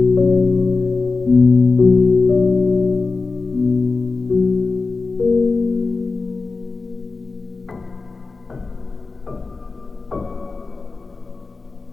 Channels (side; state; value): right; quieter; 4.0 dB